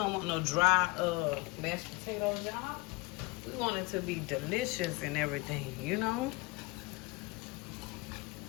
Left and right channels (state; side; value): quieter; right; 24.0 dB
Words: want no dry mashed potatoes, y'all. We want it to be delicious and everything,